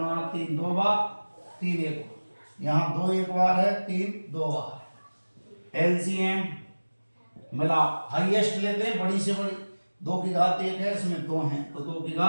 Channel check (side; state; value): both; inverted; correlation -1.00